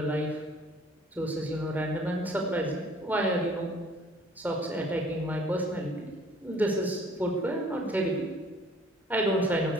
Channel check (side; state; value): both; normal; correlation 0.55